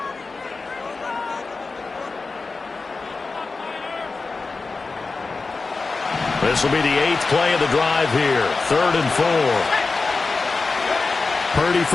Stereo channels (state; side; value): quieter; right; 4.0 dB